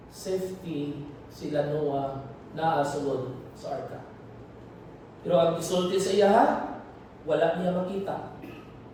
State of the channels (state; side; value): identical; both; correlation 1.00